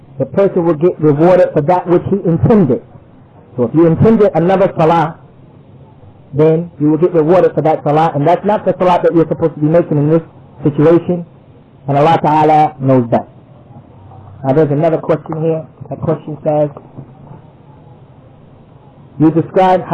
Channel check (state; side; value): identical; both; correlation 1.00